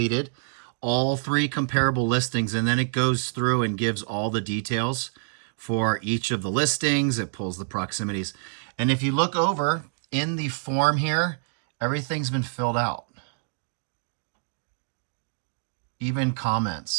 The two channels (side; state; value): left; silent; digital silence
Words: all 3 comparable listings, and then it goes through and gives all the details for each of the listings. It pulls the proximities. And if you look over in the form here, everything's been filled out. Even